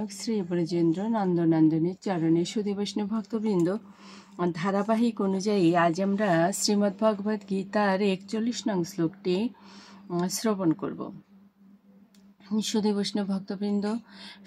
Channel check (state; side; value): identical; both; correlation 1.00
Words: শ্রী ব্রজেন্দ্র নন্দনন্দনের চরণে। সুধী বৈষ্ণব ভক্তবৃন্দ, ধারাবাহিক অনুযায়ী আজ আমরা শ্রীমদ্ ভগবদ্ গীতার 41 নং শ্লোকটি শ্রবণ করব। সুধী বৈষ্ণব ভক্তবৃন্দ,